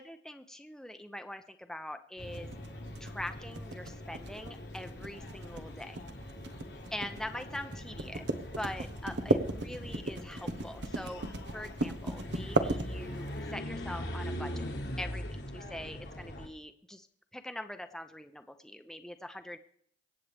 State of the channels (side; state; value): both; normal; correlation 0.49